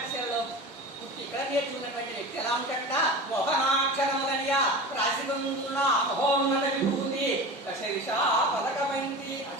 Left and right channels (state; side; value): normal; both; correlation 0.31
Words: పుట్టి ఇక్కడ నేర్చుకున్నటువంటి వ్యక్తి ఎలా ఉంటాడ? మోహనాక్షరములనియా రాసి కుందునా మహోన్నత విభూతి దశదిశా పదకబంది